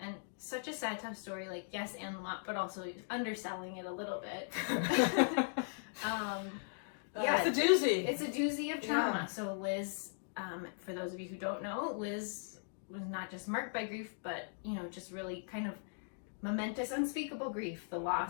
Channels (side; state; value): right; silent; digital silence